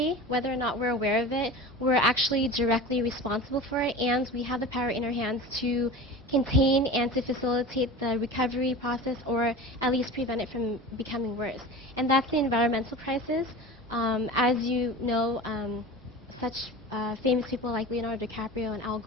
whether or not we're aware of it. We're actually directly responsible for it, and we have the power in our hands to contain and to facilitate the recovery process, or at least prevent it from becoming worse. And that's the environmental crisis. As you know, such famous people like Leonardo DiCaprio and Al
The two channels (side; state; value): both; normal; correlation 0.34